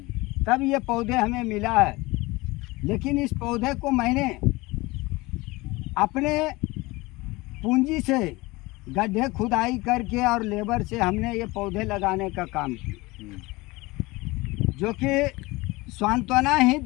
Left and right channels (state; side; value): quieter; right; 22.1 dB